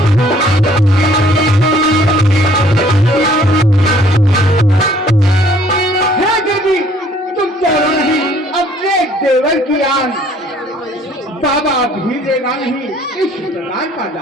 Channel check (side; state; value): both; normal; correlation 0.59